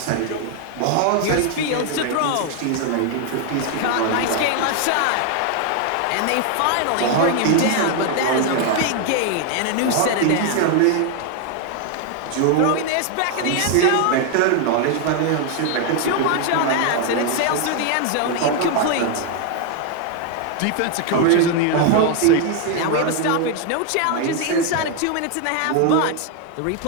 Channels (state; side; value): different; both; correlation 0.01